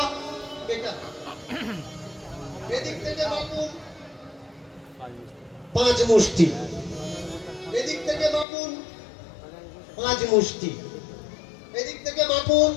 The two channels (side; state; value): right; drops out; at 8.5 s